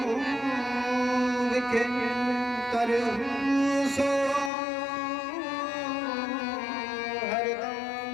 विखे कर सो हरदम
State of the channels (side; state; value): right; drops out; at 4.5 s